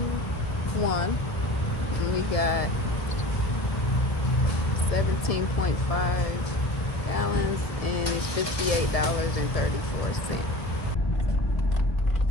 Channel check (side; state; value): right; late; 1.1 ms